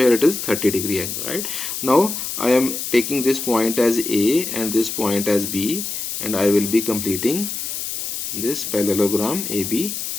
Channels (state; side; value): noise; left; hiss, 5 dB below the sound